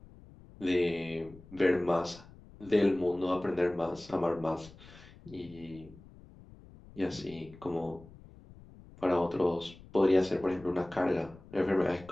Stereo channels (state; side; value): noise; left; rumble, 21 dB below the sound